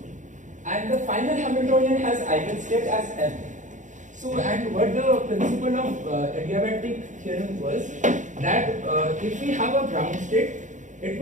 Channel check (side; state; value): left; late; 0.36 ms